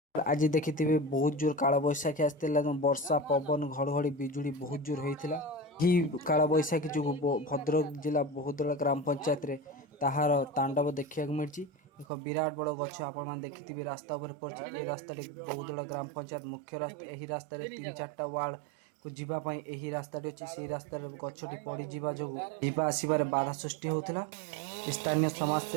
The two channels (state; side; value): drops out; left; at 12.1 s